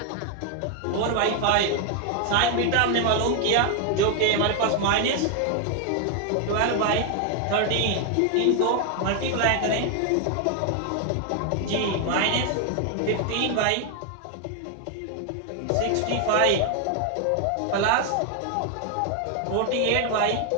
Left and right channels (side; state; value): both; different; correlation 0.00